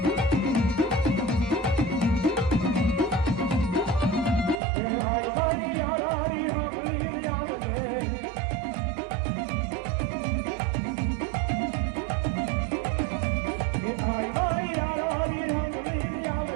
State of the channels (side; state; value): left; drops out; at 4.6 s